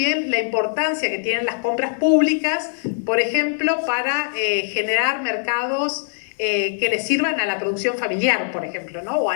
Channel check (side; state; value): right; silent; digital silence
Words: la importancia que tienen las compras públicas, por ejemplo, para generar mercados que les sirvan a la producción familiar, por ejemplo, ¿no?, o